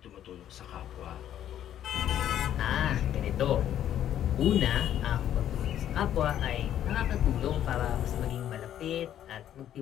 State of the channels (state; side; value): quieter; right; 10.9 dB